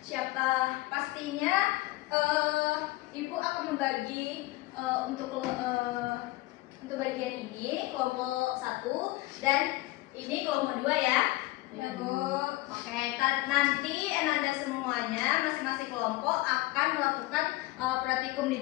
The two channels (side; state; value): right; quieter; 19.2 dB